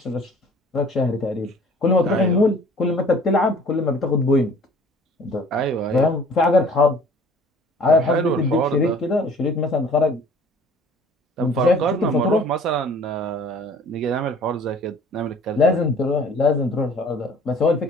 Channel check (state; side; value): normal; both; correlation 0.51